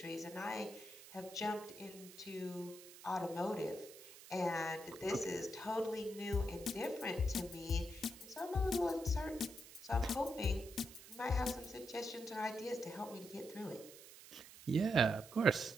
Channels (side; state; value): right; noise; hiss, 17 dB below the sound